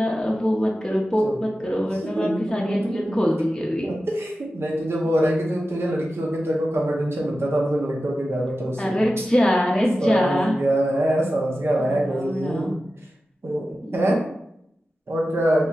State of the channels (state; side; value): normal; both; correlation 0.93